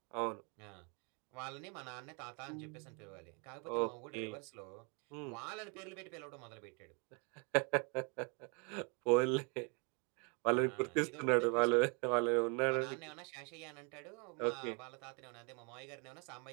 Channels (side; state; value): left; quieter; 34.0 dB